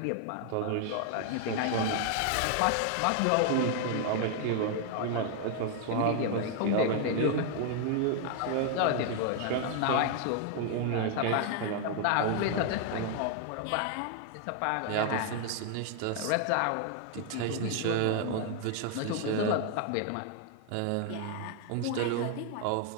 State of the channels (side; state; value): both; different; correlation 0.00